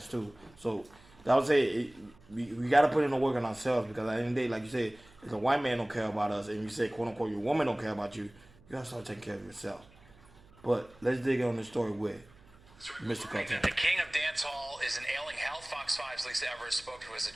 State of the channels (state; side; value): noise; right; hum, 25 dB below the sound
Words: too. So I would say we got to put in the work on ourselves because at the end of the day, like you said, if a white man don't care about us and you say quote unquote your woman don't care about you, you gotta start taking care of yourself. But let's dig on the story with Mr. Kartel. The king of dancehall is in ailing health. Fox 5's Lisa Evers spoke to his